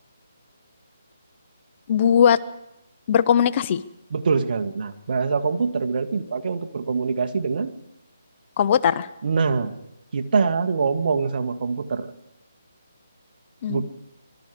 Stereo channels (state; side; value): inverted; both; correlation -0.71